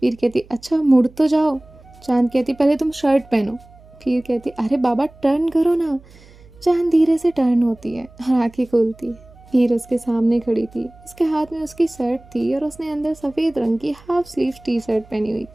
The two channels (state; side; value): noise; right; hum, 24 dB below the sound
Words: वीर कहती अच्छा मुड़ तो जाओ। चांद कहती पहले तुम शर्ट पहनो। वीर कहती अरे बाबा टर्न करो ना। चांद धीरे से टर्न होती है और आंखें खोलती है। वीर उसके सामने खड़ी थी। उसके हाथ में उसकी शर्ट थी और उसने अंदर सफ़ेद रंग की हाफ स्लीव टी शर्ट पहनी हुई